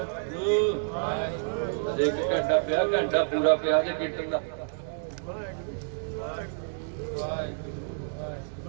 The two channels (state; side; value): silent; left; 59 dB below the other